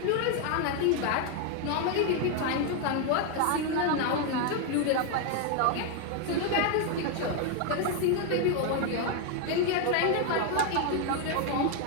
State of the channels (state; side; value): different; both; correlation 0.01